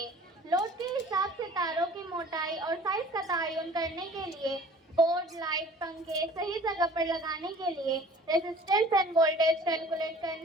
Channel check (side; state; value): both; normal; correlation 0.48